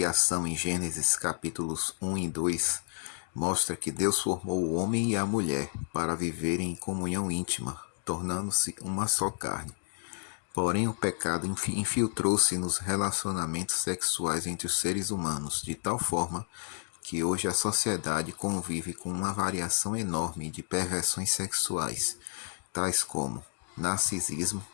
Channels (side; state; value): right; silent; digital silence